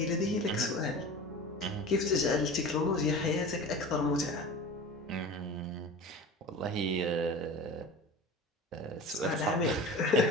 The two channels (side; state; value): both; normal; correlation 0.35